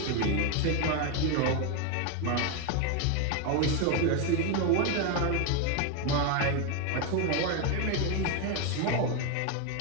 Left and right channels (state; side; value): different; both; correlation 0.02